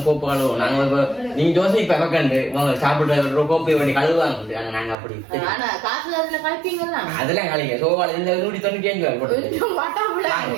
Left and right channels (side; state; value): left; drops out; at 5.0 s